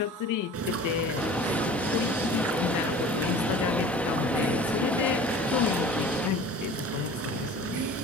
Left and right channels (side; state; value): both; normal; correlation 0.42